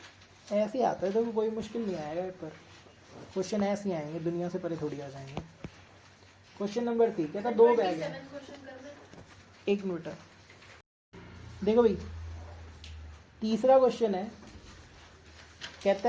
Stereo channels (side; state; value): both; identical; correlation 1.00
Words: ऐसे आता है तो कोई मुश्किल नहीं आएगा पेपर, क्वेश्चन ऐसे ही आएंगे, दुनिया से परे थोड़ी आ जाएंगे। क्वेश्चन नंबर 3 कहता 2 बैग है। 1 मिनट देखो भाई, तीसरा क्वेश्चन है, कहता